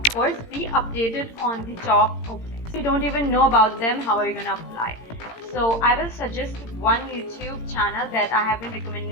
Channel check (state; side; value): late; right; 18 ms